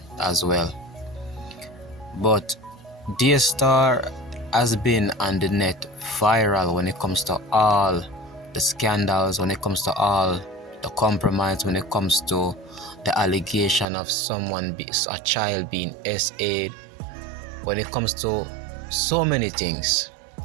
as well. But DAYSTAR has been on the net viral when it comes to all the scandals, when it comes to all the compromise, when it comes to the allegation of a child being SA'd, when it comes to so many things.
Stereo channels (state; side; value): drops out; left; at 13.9 s